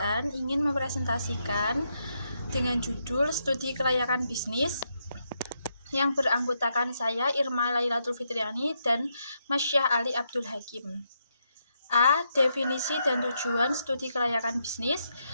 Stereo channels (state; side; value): inverted; both; correlation -0.80